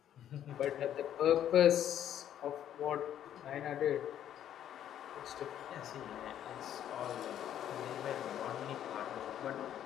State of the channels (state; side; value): quieter; right; 10.6 dB